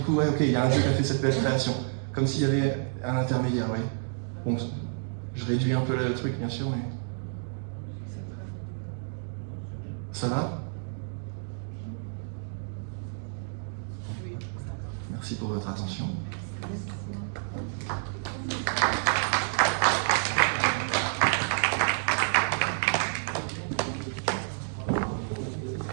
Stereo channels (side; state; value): left; silent; digital silence